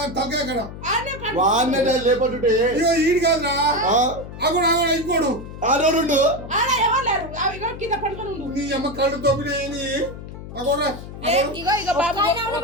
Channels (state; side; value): noise; left; hum, 12 dB below the sound